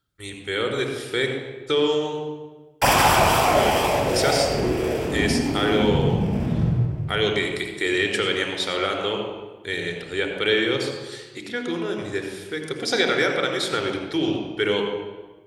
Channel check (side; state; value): both; identical; correlation 1.00